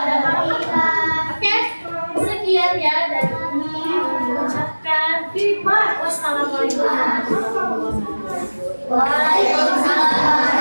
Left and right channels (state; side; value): inverted; both; correlation -1.00